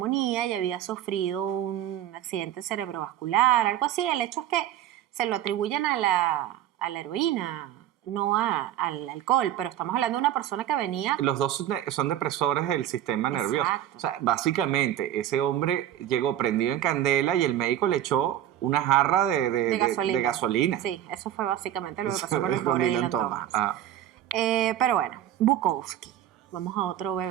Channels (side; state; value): left; quieter; 11.9 dB